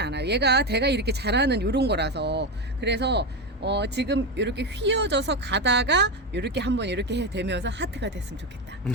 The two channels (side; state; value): both; normal; correlation 0.14